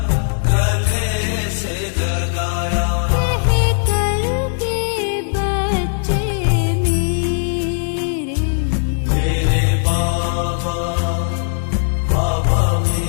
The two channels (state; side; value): silent; right; digital silence